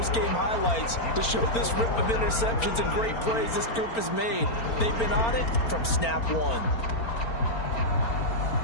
highlights to show this rip of interceptions and great plays this group has made. They've been on it from snap 1.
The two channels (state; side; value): late; right; 4.4 ms